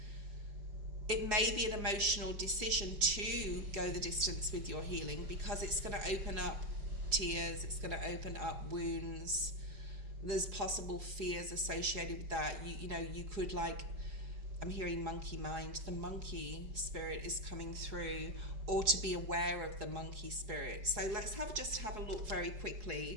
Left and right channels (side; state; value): left; late; 4.8 ms